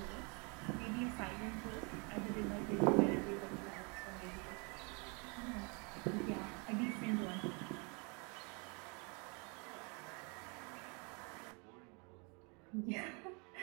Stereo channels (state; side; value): quieter; left; 32.9 dB